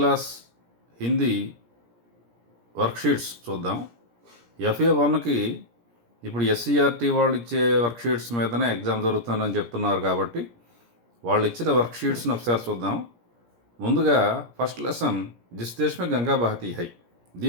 Hindi worksheets చూద్దాం. FA1కి ఇప్పుడు SCRT వాళ్ళు ఇచ్చే వర్క్షీట్స్ మీదనే ఎగ్జామ్ జరుగుతుందని చెప్తున్నారు కాబట్టి వాళ్ళు ఇచ్చిన వర్క్షీట్స్ని ఒకసారి చూద్దాం. ముందుగా ఫస్ట్ లెసన్ జిస్ దేశ్ మే గంగా బహతీ హై.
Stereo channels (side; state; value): left; late; 17 ms